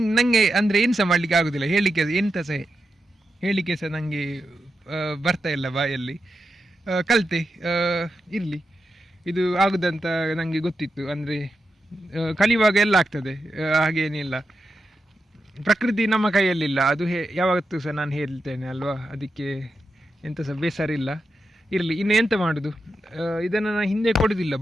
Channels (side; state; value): both; normal; correlation 0.88